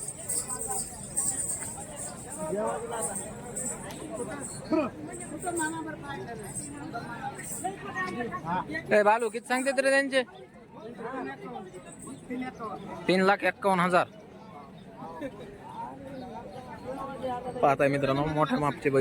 ए बालू किती सांगते तरी त्यांचे? 3,51,000. पाहताय मित्रांनो मोठ्या मापचे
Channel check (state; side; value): identical; both; correlation 1.00